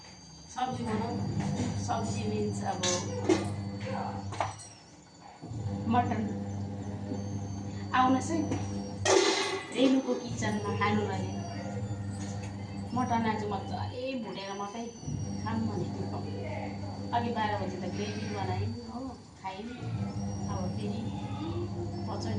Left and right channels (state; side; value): identical; both; correlation 1.00